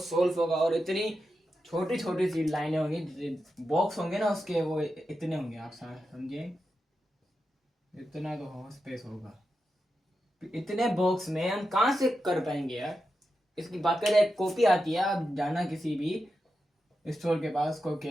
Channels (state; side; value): normal; both; correlation 0.89